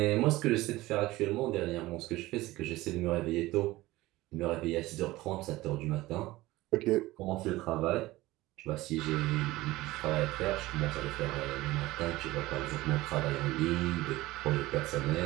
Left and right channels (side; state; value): left; quieter; 18.4 dB